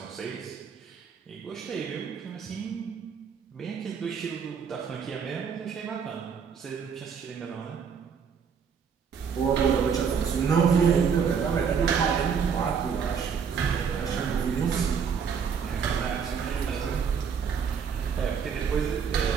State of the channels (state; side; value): quieter; left; 6.7 dB